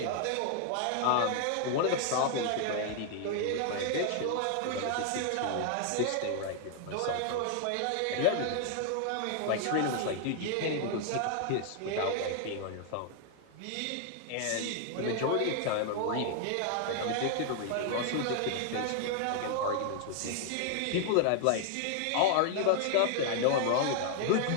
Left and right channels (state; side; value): different; both; correlation 0.00